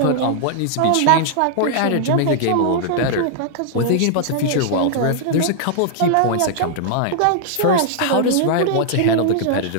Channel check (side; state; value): both; different; correlation -0.01